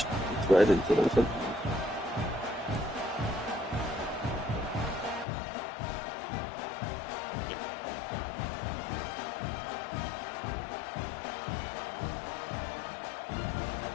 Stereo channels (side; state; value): right; drops out; at 5.2 s